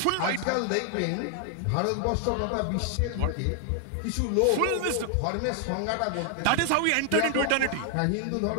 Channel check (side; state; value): both; different; correlation 0.00